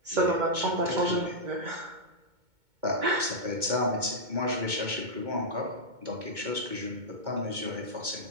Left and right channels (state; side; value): late; left; 2.2 ms